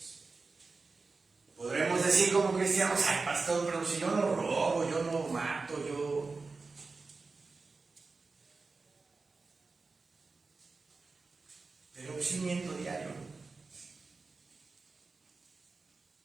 Podremos decir como cristianos, ay pastor, pero si yo no robo, yo no mato, pero sí miento diario,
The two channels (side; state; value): left; quieter; 4.1 dB